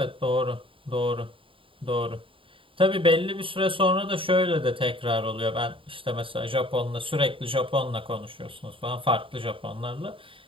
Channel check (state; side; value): late; left; 0.25 ms